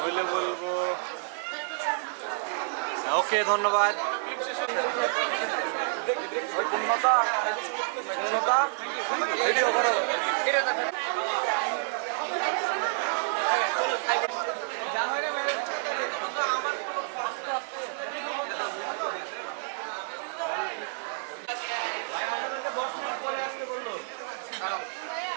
বলবো ওকে, ধন্যবাদ।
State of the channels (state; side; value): silent; left; digital silence